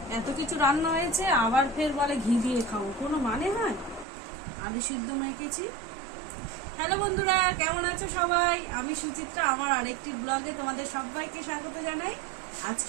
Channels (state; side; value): drops out; left; at 4.0 s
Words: এত কিছু রান্না হয়েছে আবার ফের বলে ঘি দিয়ে খাবো, কোনো মানে হয়? আলু সিদ্ধ মেখেছি। হ্যালো বন্ধুরা, কেমন আছো সবাই? আমি সুচিত্রা, আমার আরেকটি ব্লগে তোমাদের সবাইকে স্বাগত জানাই।